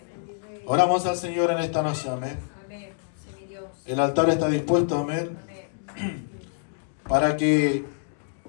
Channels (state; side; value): silent; right; digital silence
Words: Oramos al Señor en esta noche, amén. Amén. Sí, mi Dios. El altar está dispuesto, amén, Amén. para que